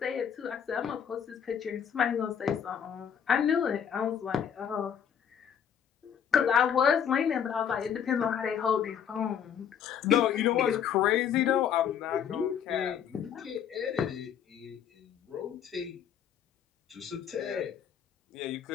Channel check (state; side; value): quieter; right; 8.4 dB